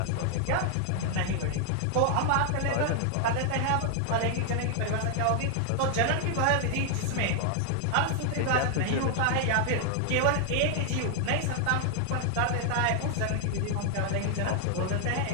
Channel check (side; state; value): both; different; correlation 0.00